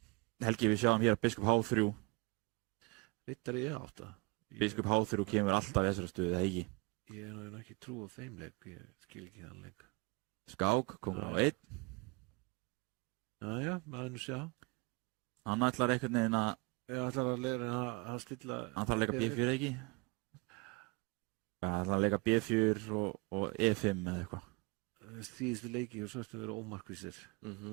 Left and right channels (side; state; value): left; quieter; 27.3 dB